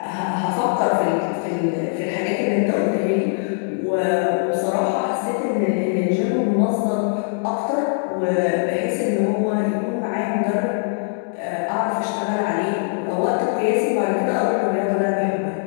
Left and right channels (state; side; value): silent; right; 65 dB below the other